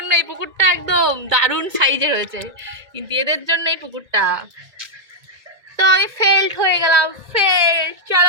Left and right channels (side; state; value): left; late; 1.9 ms